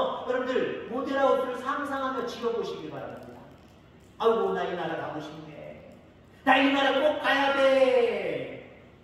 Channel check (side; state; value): both; identical; correlation 1.00